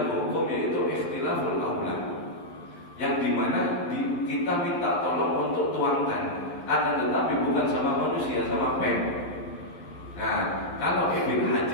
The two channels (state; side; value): late; right; 11 ms